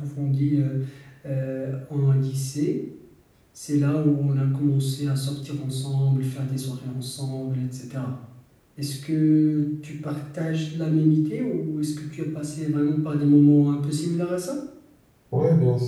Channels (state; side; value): identical; both; correlation 1.00